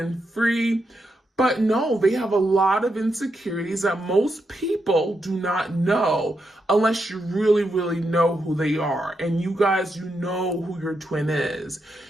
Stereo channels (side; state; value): both; normal; correlation 0.83